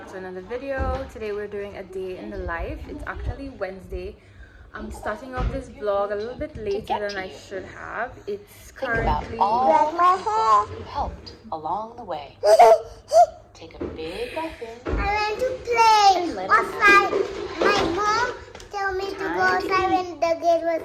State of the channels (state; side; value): identical; both; correlation 1.00